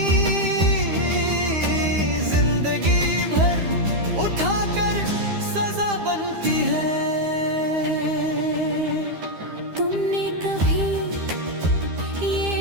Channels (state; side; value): late; left; 13 ms